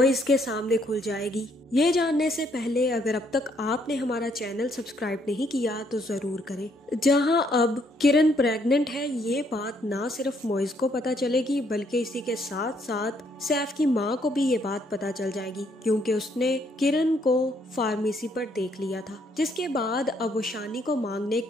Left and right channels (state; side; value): normal; both; correlation 0.69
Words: के सामने खुल जाएगी? ये जानने से पहले अगर अब तक आपने हमारा चैनल सब्सक्राइब नहीं किया तो जरूर करें। जहां अब किरण प्रेग्नेंट है, ये बात ना सिर्फ मोइज को पता चलेगी बल्कि इसी के साथ साथ सैफ की माँ को भी ये बात पता चल जाएगी, क्योंकि उसने किरण को फार्मेसी पर देख लिया था। जिसके बाद अब वो शानी को मांगने